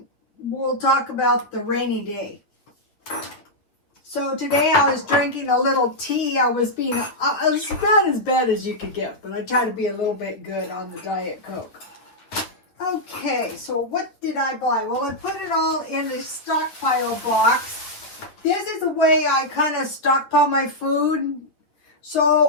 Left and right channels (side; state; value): right; late; 9.4 ms